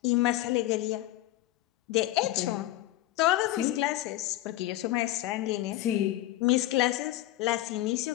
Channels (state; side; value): quieter; right; 15.6 dB